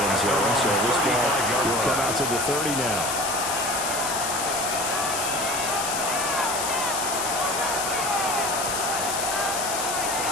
zone. So this ball will come out to the 30 now.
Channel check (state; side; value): noise; left; hiss, 3 dB below the sound